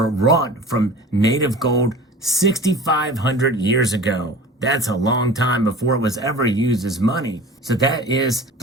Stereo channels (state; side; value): normal; both; correlation 0.39